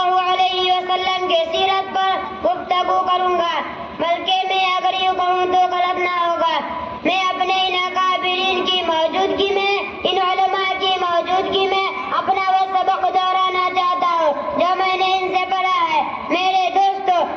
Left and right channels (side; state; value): both; identical; correlation 1.00